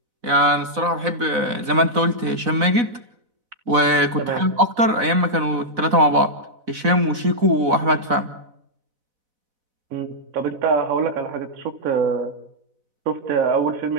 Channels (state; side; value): late; left; 4.0 ms